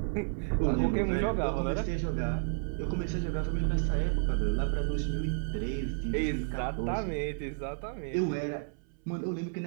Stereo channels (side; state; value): left; silent; 57 dB below the other